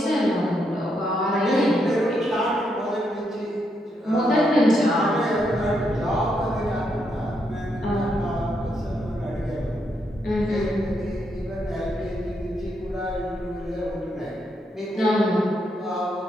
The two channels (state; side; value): normal; both; correlation 0.79